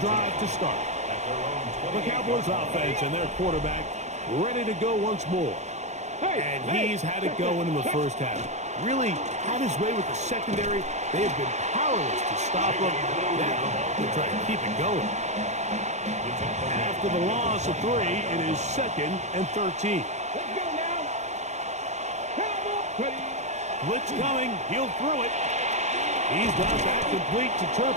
drive to start. The Cowboys offense and their quarterback ready to go once more. And he's had it going in the first half. Really had his way with the secondary. They have been powerless to stop him. Now they're trying to keep it going. After the loss of 3, it is 2nd and 13. Let's go now. Ready. Blitz coming. He'll throw it. He's got that complete to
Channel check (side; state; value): left; late; 0.33 ms